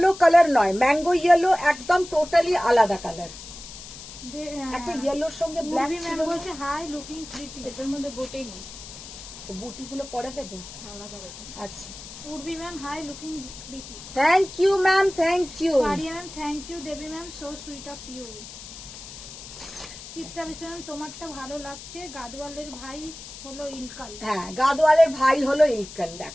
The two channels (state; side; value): noise; left; hiss, 14 dB below the sound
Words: কালার নয়, ম্যাঙ্গো ইয়েলো একদম টোটালি আলাদা কালার। একটা ইয়েলোর সঙ্গে ব্ল্যাক ছিল। ম্যাম বলছে হাই লুকিং প্রিটি। এটার মধ্যে বুটি নেই, বুটি গুলো পরে দেবে। আলাদা করে। আচ্ছা, Urbi ma'am hi looking pretty. Thank you ma'am, thank you. Paria ma'am thank you. Debi ma'am so sweet of you. Chitra Biswas ma'am তোমারটা ভালো লাগছে, গাদওয়ালের ভাই হলো ইলকাল। হ্যাঁ, গাদওয়ালের ভাই হলো ইলকাল,